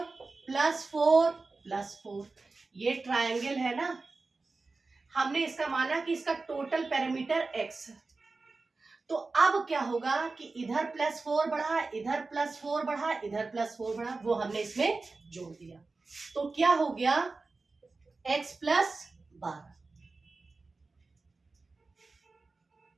प्लस 4 प्लस 4। ये ट्रायंगल है ना, हमने इसका माना कि इसका टोटल पैरामीटर x है। तो अब क्या होगा कि इधर प्लस 4 बढ़ा, इधर प्लस 4 बढ़ा, इधर प्लस 4 बढ़ा, वो हमने इसमें जोड़ दिया। तो क्या हो गया, x प्लस 12।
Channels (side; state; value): left; quieter; 3.8 dB